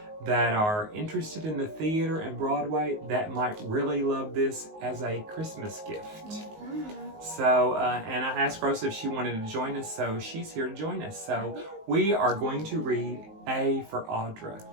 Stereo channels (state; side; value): late; left; 19 ms